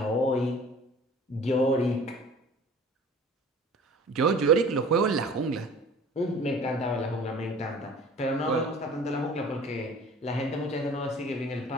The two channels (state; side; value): normal; both; correlation 0.46